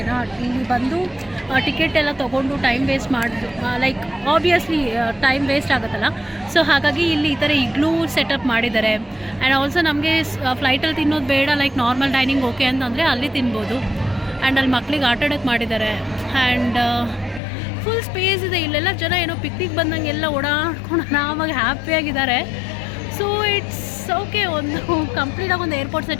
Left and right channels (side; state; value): right; drops out; at 17.4 s